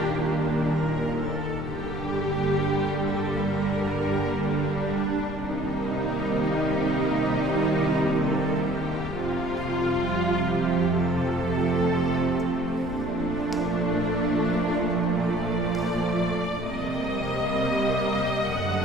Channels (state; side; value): noise; left; rumble, 10 dB below the sound